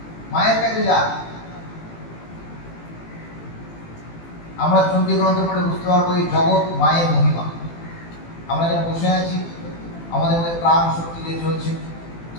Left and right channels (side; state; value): right; late; 18 ms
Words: মায়ের কাছে যা। আমরা চণ্ডী গ্রন্থ পড়ে বুঝতে পারবো এই জগৎ মায়ের মহিমা। আমরা যারা বসে আছি, আমাদের মধ্যে প্রাণ শক্তি যে চলছে,